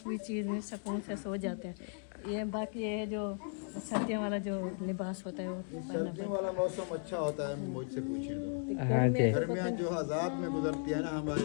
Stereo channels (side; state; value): right; silent; 54 dB below the other